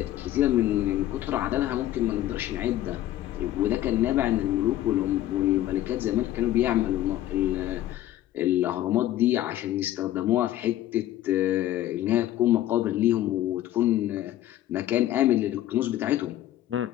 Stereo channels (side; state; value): right; quieter; 13.6 dB